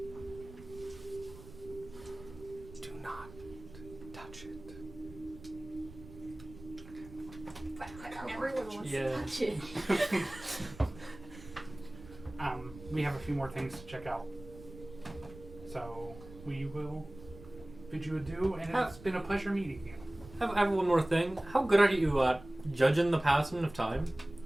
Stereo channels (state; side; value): noise; right; rumble, 17 dB below the sound